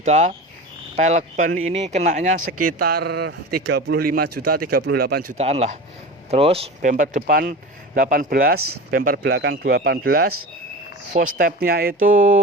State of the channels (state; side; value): normal; both; correlation 0.31